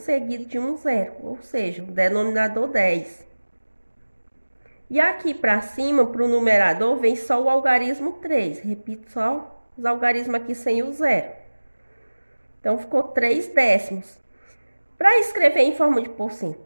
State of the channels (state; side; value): inverted; both; correlation -1.00